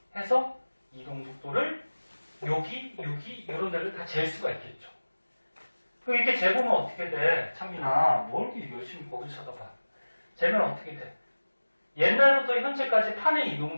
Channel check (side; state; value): both; inverted; correlation -1.00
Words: 해서 이동 속도를 여기 이런 데를 다 잴 수가 있겠죠. 그럼 이렇게 재보면 어떻게 돼? 찬민아, 뭘 이렇게 열심히 거기 쳐다봐. 재면 어떻게 돼? 옛날부터 현재까지 판의 이동